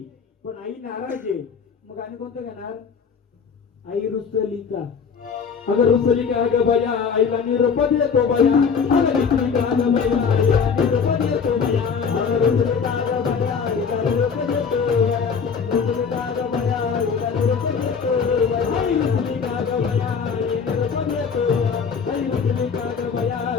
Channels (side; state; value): right; quieter; 6.1 dB